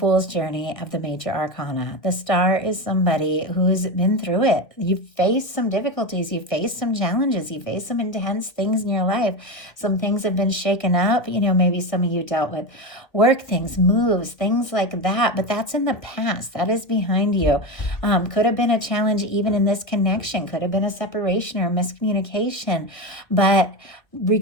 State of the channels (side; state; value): right; late; 1.8 ms